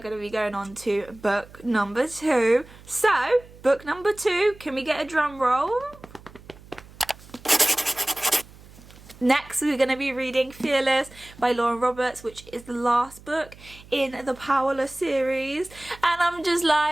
to be going on to book number 2. So book number 2, can we get a drum roll? Next, we're going to be reading Fearless by Lauren Roberts, which is the last book in the Powerless series. And I'm just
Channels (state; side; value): noise; right; hum, 21 dB below the sound